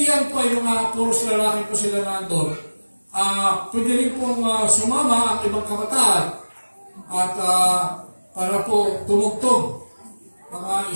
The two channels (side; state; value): both; inverted; correlation -1.00